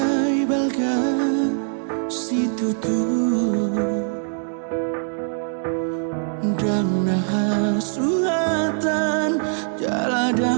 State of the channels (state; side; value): silent; left; digital silence